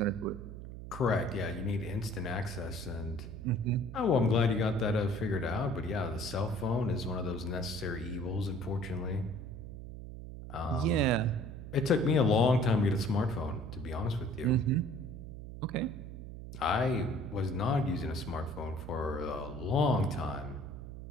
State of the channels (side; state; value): right; noise; hum, 10 dB below the sound